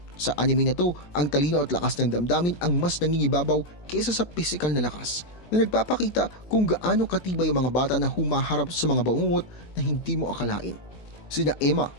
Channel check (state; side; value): late; right; 18 ms